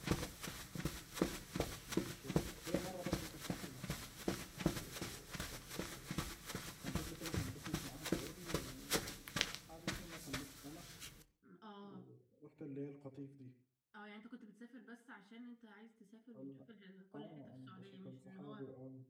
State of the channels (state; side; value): identical; both; correlation 1.00